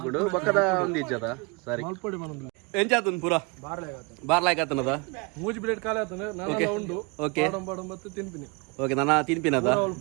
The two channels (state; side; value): quieter; left; 29.4 dB